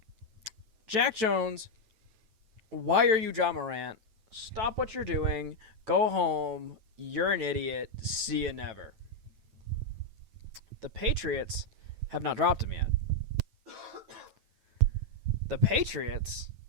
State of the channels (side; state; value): left; late; 9.1 ms